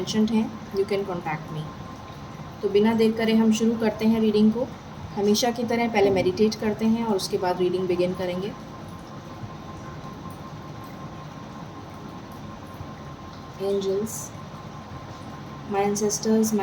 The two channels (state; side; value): identical; both; correlation 1.00